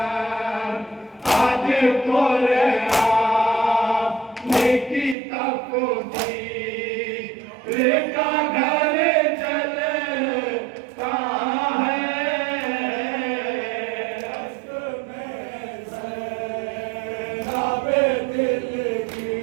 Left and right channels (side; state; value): left; drops out; at 5.2 s